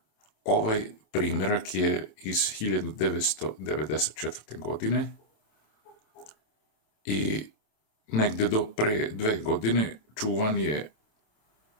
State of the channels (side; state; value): right; late; 27 ms